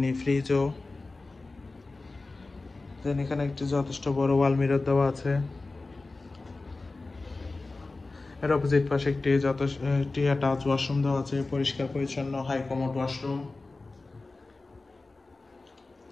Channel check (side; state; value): right; quieter; 3.4 dB